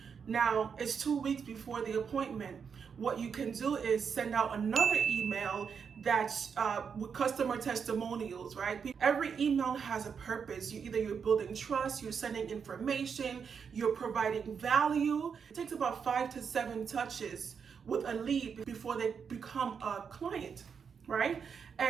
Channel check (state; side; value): quieter; left; 6.5 dB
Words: Now, it's 2 weeks before the appointment. What you can do is send out another email that's with customer testimonials, right? Every email has a purpose. You're building trust, you're sending information, you're providing value. It takes about 5 to 7 touches with a lead before they become a client, right?